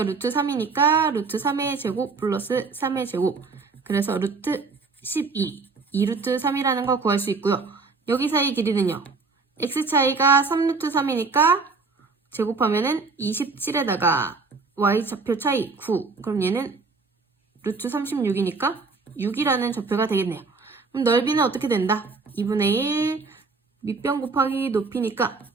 루트 3이니까 루트 3의 제곱 플러스 3의 제곱 그래서 루트 12 2루트 3이라는 거 구할 수 있고요. 여기 사이의 길이는요. x 차이가 3루트 3이니까 제곱하면은 27에다가 y좌표 차이 9 그럼 얘는 루트 36이니까 6이라는 좌표가 되겠네요. 그럼 넓이는 어떻게 된다? 2분의 1 밑변 곱하기 높이니까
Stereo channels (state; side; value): quieter; left; 4.3 dB